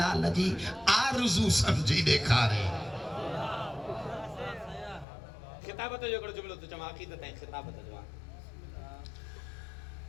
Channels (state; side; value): drops out; right; at 5.1 s